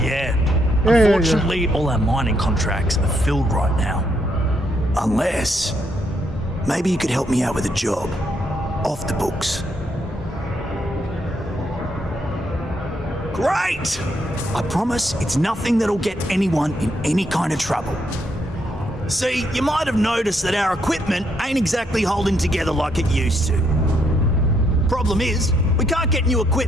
yeah, unfortunately, all our mining contracts are filled right now. Unless, maybe you could help me out with a job. Off the books. Great! I promise it's nothing that'll get anyone in any kind of trouble. See, you might have noticed that our equipment ain't exactly holding together like it used to. Problem is, we can't get new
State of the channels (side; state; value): both; normal; correlation 0.75